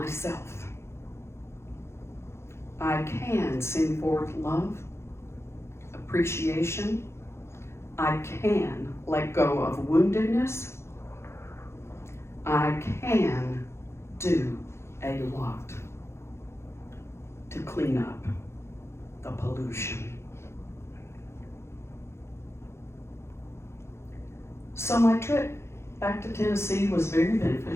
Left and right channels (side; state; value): right; late; 0.13 ms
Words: I can send forth love, appreciation. I can let go of woundedness. I can do a lot to clean up the pollution. So my trip back to Tennessee was very